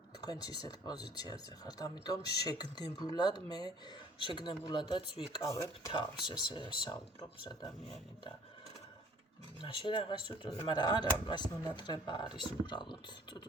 თქვენც ისეთ პოზიციაზე ხართ, ამიტომ შეგნებულადაც ვიკავებ თავს, ესე საუბრობს ადამიანი და მაშინ რაღაც წუწუნი, მაგრამ არა, მას მონატრება არის უბრალოდ.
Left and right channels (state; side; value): normal; both; correlation 0.53